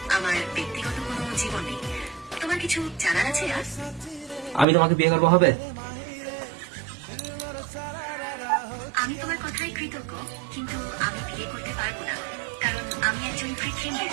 আমার ব্যক্তিগত কোনো জীবন নেই। তোমার কিছু জানার আছে আর? আমি তোমাকে বিয়ে করবো, হবে? আমি তোমার কথায় কৃতজ্ঞ, কিন্তু আমি বিয়ে করতে পারবো না, কারণ আমি একজন কৃত্রিম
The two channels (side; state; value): left; drops out; at 4.7 s